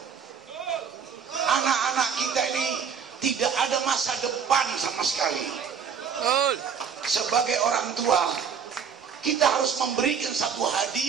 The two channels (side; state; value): left; quieter; 7.0 dB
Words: Anak-anak kita ini tidak ada masa depan sama sekali. Sebagai orang tua, kita harus memberikan satu